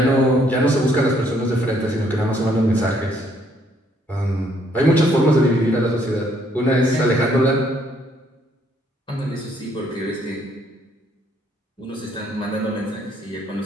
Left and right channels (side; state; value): both; normal; correlation 0.67